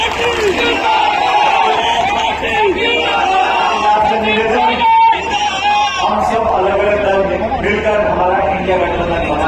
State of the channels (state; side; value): identical; both; correlation 1.00